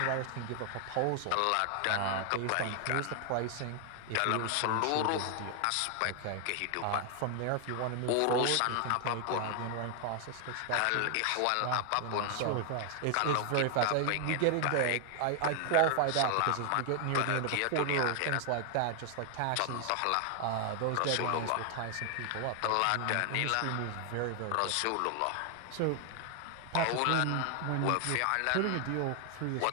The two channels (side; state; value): both; different; correlation 0.00